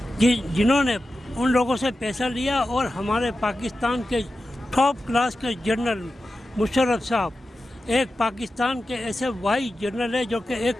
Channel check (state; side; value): normal; both; correlation 0.92